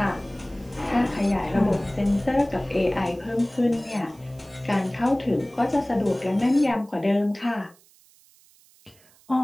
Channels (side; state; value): right; noise; hiss, 29 dB below the sound